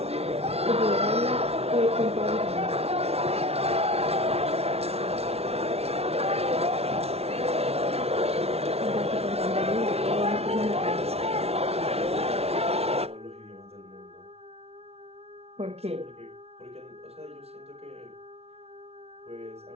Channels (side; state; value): left; late; 0.30 ms